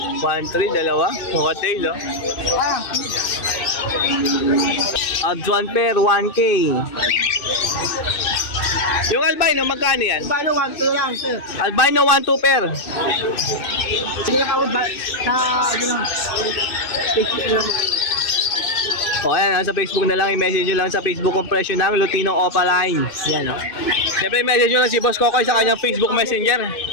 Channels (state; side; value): late; right; 2.6 ms